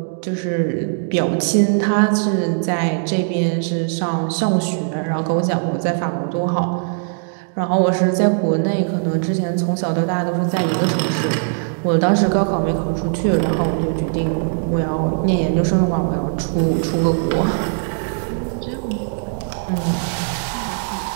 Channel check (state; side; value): silent; left; 65 dB below the other